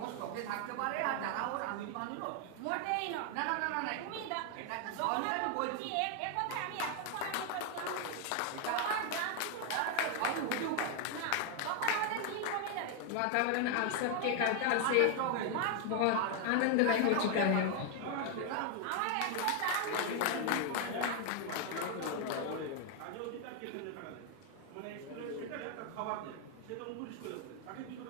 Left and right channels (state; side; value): different; both; correlation 0.01